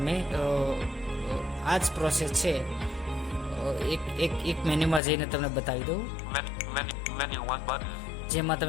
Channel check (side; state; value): right; drops out; at 5.0 s